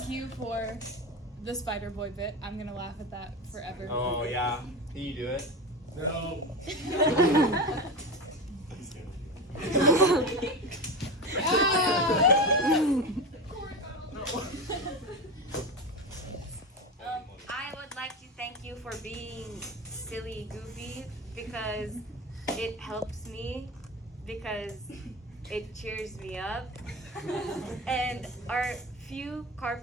you for the Spider Boy bit. I'm gonna laugh at that forever. Oh yeah. Can you do it? No. I would like to thank you for being silly, goofy, because it helps me, because it cheers me up. And our few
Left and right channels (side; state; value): both; normal; correlation 0.23